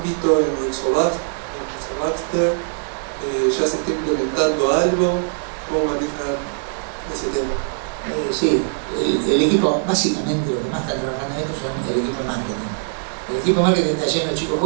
en Rizobacter? ¿Ya se está implementando algo? ¿Cómo manejan ese tema? Sí, el equipo, básicamente lo que más está trabajando en esto son el equipo de marketing. El equipo de marketing está lleno de chicos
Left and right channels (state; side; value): silent; left; digital silence